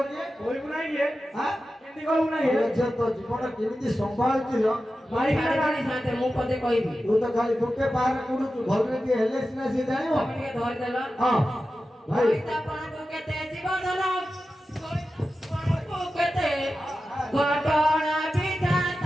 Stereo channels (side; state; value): both; normal; correlation 0.93